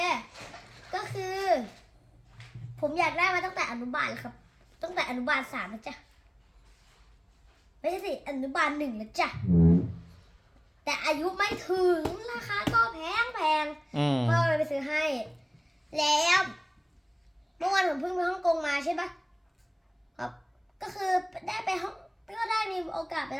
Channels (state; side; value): identical; both; correlation 1.00